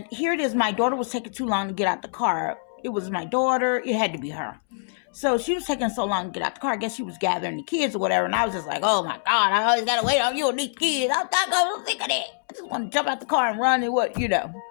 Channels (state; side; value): silent; right; 62 dB below the other